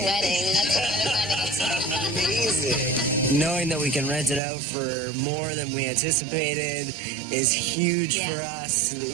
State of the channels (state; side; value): drops out; left; at 4.4 s